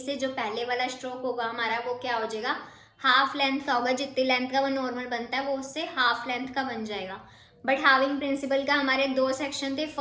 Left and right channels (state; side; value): identical; both; correlation 1.00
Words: जो पहले वाला स्ट्रोक होगा हमारा वो क्या हो जाएगा, हाफ लेंथ का होगा। जितनी लेंथ का वो नॉर्मल बनता है वो उससे हाफ लेंथ का बन जाएगा। बट हाविंग प्रिंसिपल का हमारे दो सेक्शन थे।